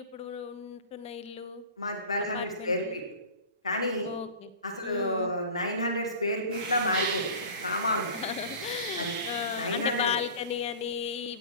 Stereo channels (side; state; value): both; inverted; correlation -0.38